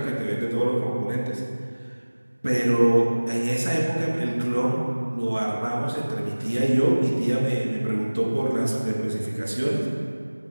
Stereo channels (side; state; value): both; inverted; correlation -1.00